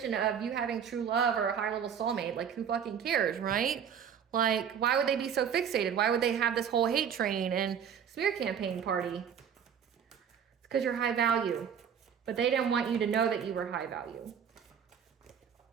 of you having true love or a high level soulmate? Like, who fucking cares, right? Like, why would they be so fixated? Why would they have this whole hate train and smear campaign party? It's because you're high value. But they didn't want you to know that you were high value.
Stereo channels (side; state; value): left; quieter; 7.9 dB